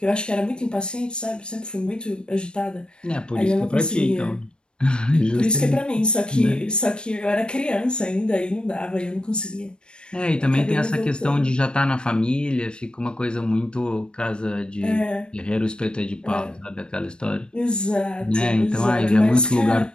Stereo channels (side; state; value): right; late; 0.052 ms